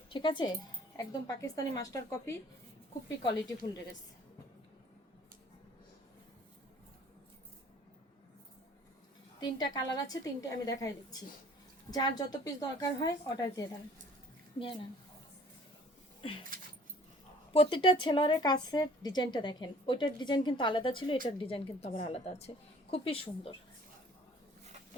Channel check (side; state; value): both; normal; correlation 0.53